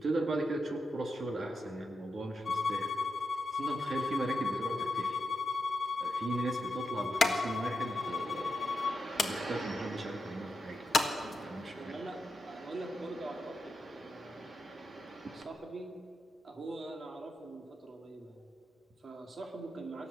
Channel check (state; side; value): normal; both; correlation 0.87